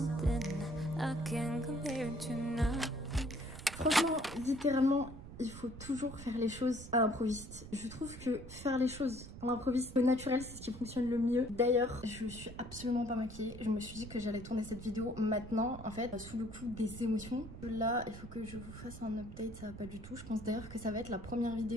I can't compare to now. Franchement, littéralement, il faut toujours faire les choses à l'improviste. Je trouve que faire les choses à l'improviste, au naturel, c'est ce qui fonctionne le mieux. D'ailleurs, je suis absolument pas maquillée. Je me suis dit que j'allais tourner cette vidéo maintenant, en fait, sous le coup des émotions. Là, il faut que je vous fasse un update, ça va pas du tout. Je pense d'ailleurs que ça va être la première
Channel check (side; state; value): right; noise; rumble, 13 dB below the sound